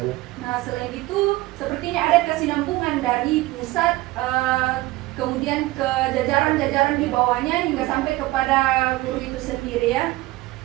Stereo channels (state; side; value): quieter; left; 18.9 dB